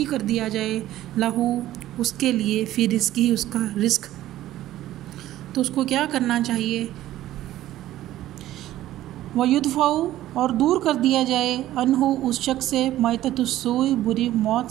کر دیا جائے، لہ، اس کے لیے، فی رزق ہی، اس کا رزق۔ تو اس کو کیا کرنا چاہیے؟ ویدفع، اور دور کر دیا جائے، عنہ، اس شخص سے، میتۃ السوء، بری موت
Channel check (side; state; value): left; quieter; 14.1 dB